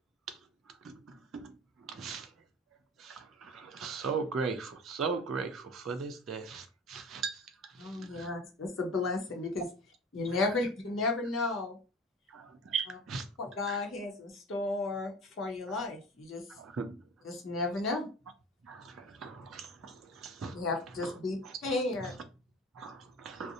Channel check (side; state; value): both; normal; correlation 0.38